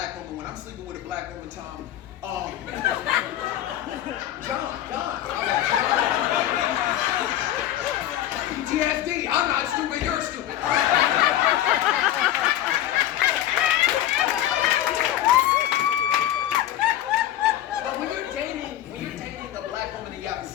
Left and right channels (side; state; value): right; quieter; 12.5 dB